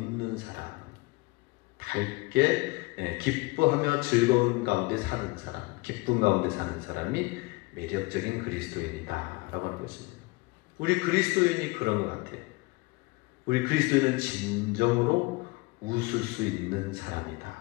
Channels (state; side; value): quieter; right; 24.5 dB